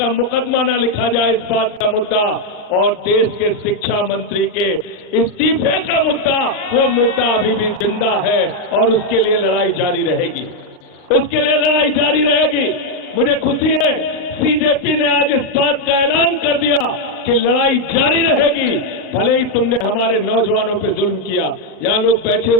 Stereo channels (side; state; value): right; late; 39 ms